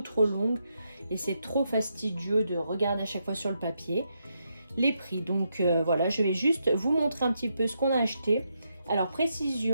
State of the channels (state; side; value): inverted; both; correlation -0.81